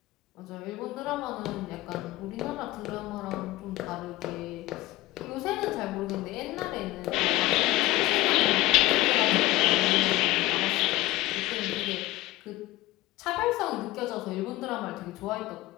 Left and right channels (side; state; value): right; quieter; 18.0 dB